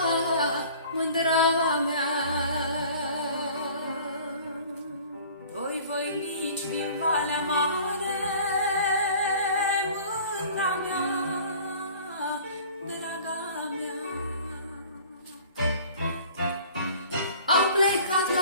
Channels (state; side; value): inverted; both; correlation -0.47